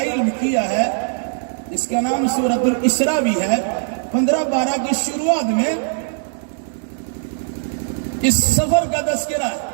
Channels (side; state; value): left; silent; digital silence